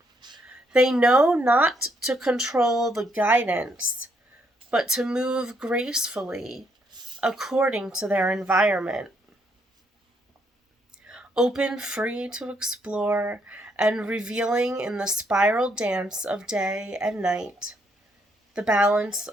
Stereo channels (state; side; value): normal; both; correlation 0.73